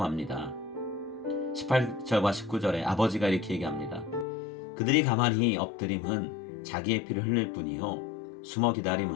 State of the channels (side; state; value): right; drops out; at 4.2 s